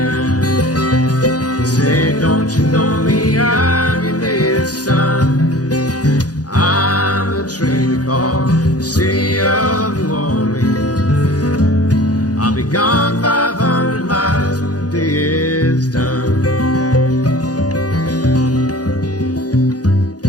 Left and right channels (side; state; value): right; late; 0.68 ms